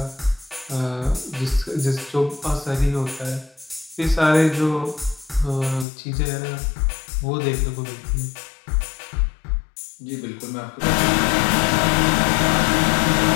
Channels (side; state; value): right; drops out; at 5.9 s